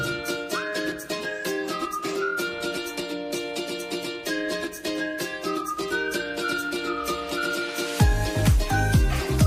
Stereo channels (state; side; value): identical; both; correlation 1.00